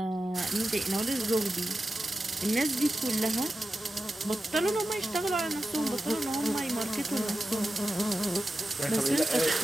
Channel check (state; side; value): normal; both; correlation 0.93